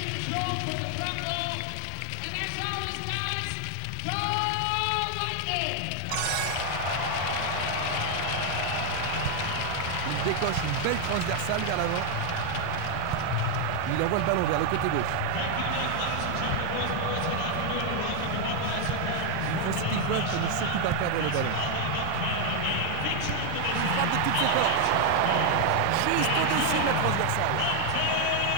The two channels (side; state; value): both; different; correlation 0.01